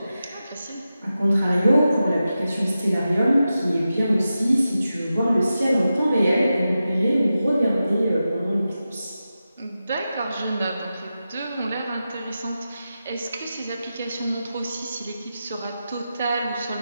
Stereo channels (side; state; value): both; inverted; correlation -0.91